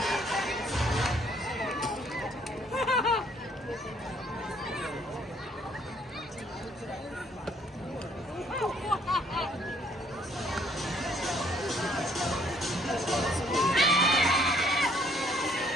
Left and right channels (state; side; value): normal; both; correlation 0.64